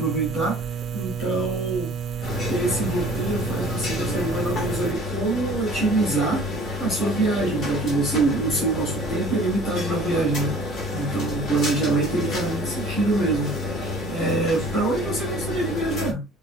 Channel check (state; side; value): normal; both; correlation 0.49